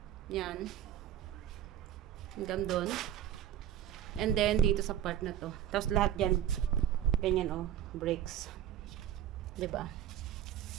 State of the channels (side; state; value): left; quieter; 10.9 dB